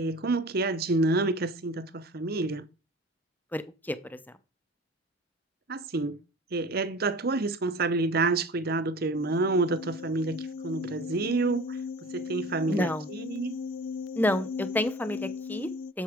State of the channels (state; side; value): normal; both; correlation 0.41